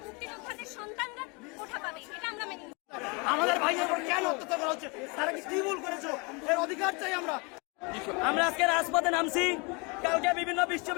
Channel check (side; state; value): right; quieter; 30.1 dB